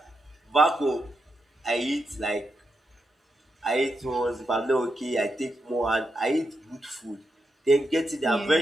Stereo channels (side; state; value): both; normal; correlation 0.85